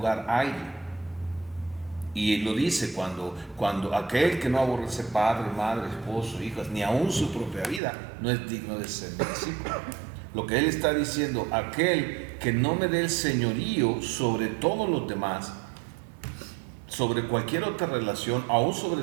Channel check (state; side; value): drops out; left; at 7.8 s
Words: a alguien. Y lo dice cuando aquel que no aborrece padre, madre, esposo, hijas, ni aún su propia vida, no es digno de ser mi discípulo. Lo que él está diciendo: aquel que no me dé el señorío sobre todos los demás, sobre cualquier otra relación, aún